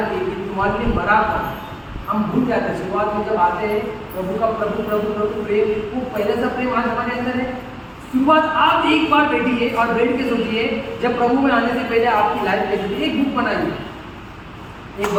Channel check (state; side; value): identical; both; correlation 1.00